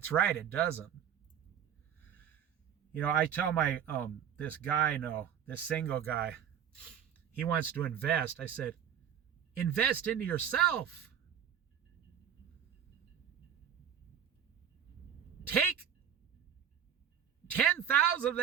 right, it doesn't. You know, I tell my, this guy, this single guy, he wants to invest. I said, invest into yourself. Take 10,000 of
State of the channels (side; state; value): left; quieter; 8.9 dB